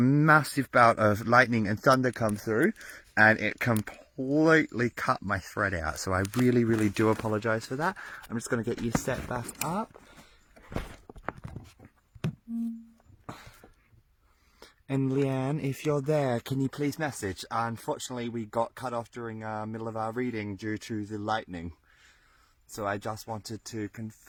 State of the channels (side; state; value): both; identical; correlation 1.00